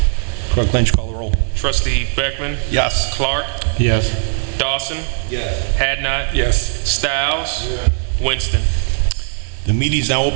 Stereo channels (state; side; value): silent; left; digital silence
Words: Clerk Lynch, call the roll. Trustee Beckman. Yes. Clark. Yes. Dawson, Yes. Hadnot, Yes. Styles, Winston. The meeting is now